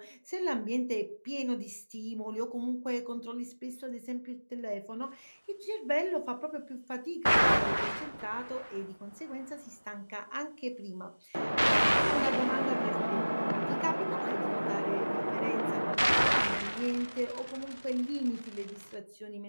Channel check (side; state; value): both; inverted; correlation -1.00